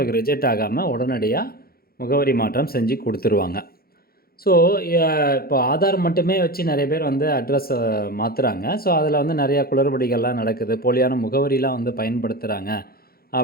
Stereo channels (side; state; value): right; late; 0.44 ms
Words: ரிஜெக்ட் ஆகாமல் உடனடியாக முகவரி மாற்றம் செஞ்சு கொடுத்துருவாங்க. ஸோ இப்போ ஆதார் மட்டுமே வச்சு நிறைய பேர் அட்ரஸை மாற்றுறாங்க. ஸோ அதில் நிறையா குளறுபடிகள்லாம் நடக்குது, போலியான முகவரிலாம் பயன்படுத்துகிறாங்க